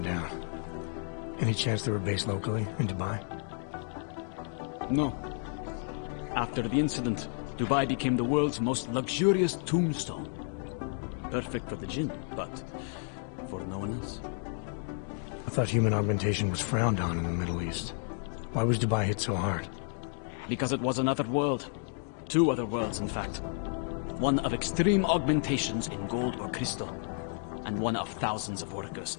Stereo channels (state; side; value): silent; right; 57 dB below the other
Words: down. Any chance they were based locally, in Dubai? No. After the incident, Dubai became the world's most luxurious tombstone. Perfect for the Jinn, but for no one else. I thought human augmentation was frowned on in the Middle East. Why was Dubai hit so hard? Because it was another world. Two other worlds, in fact. One of extreme augmentations in gold or crystal, and one of thousands of workers